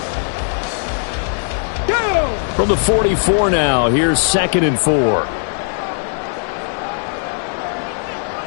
From the 44 now, here's 2nd and 4.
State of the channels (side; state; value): right; silent; digital silence